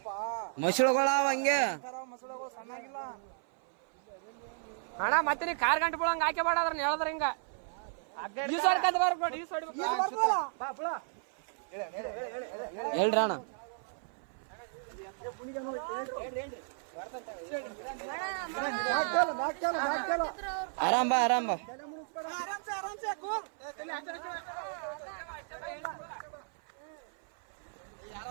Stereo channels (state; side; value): silent; left; 55 dB below the other